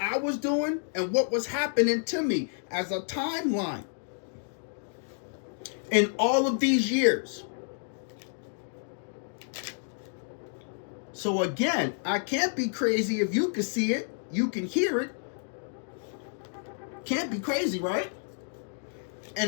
was doing and what was happening to me as a timeline in all of these years. So again, I can't be crazy if you can see it, you can hear it. Can't be crazy, right?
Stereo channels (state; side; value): silent; right; digital silence